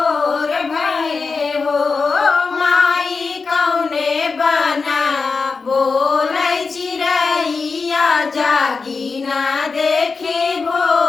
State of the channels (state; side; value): quieter; right; 4.6 dB